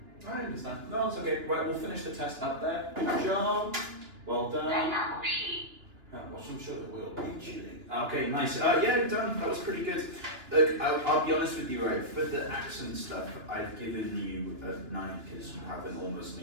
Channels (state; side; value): late; left; 2.9 ms